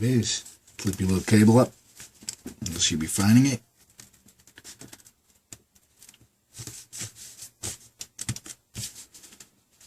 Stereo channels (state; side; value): identical; both; correlation 1.00